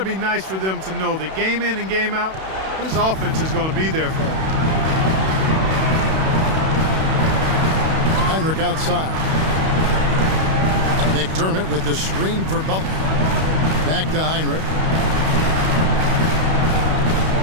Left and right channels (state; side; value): late; left; 31 ms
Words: be nice for them to know that game in and game out, his offense is going to be there for him. Heinrich outside. McDermott with the screen for Butler. Back to Heinrich.